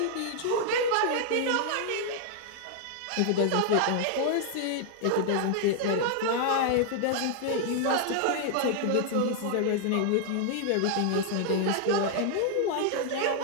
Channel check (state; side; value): different; both; correlation 0.00